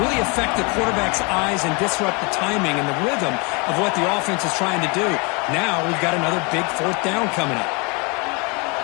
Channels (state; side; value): quieter; right; 30.7 dB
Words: affect the quarterback's eyes and disrupt the timing and the rhythm of what the offense is trying to do. Now we've got another big fourth down coming up.